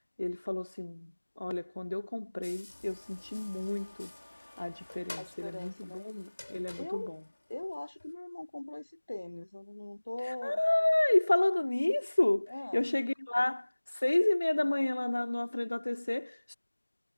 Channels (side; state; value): both; inverted; correlation -1.00